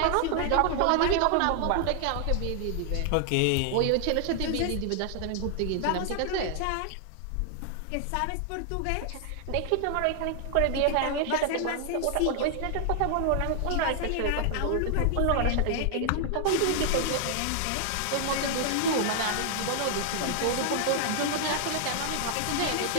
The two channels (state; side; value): different; both; correlation 0.00